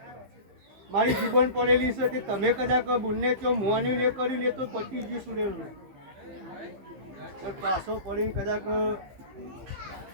મારી જીવન પડેલી છે કે તમે કદાચ બુનને ચો મુવાની ને કર્યું ને તો પતી ગયું સુરેલું પાછો પડીને કદાચ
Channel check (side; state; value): left; late; 15 ms